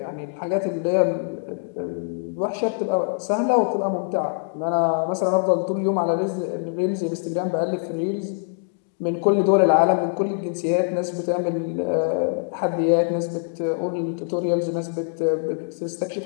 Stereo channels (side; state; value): right; silent; digital silence